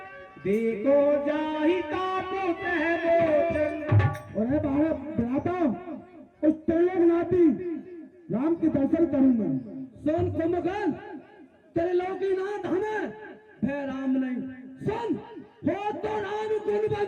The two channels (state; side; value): identical; both; correlation 1.00